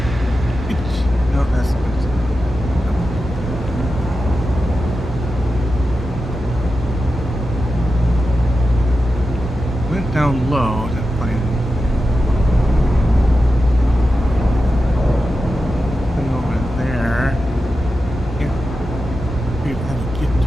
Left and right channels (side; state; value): both; normal; correlation 0.91